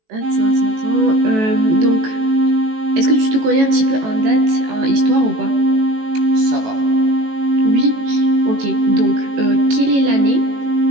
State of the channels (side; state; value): left; late; 18 ms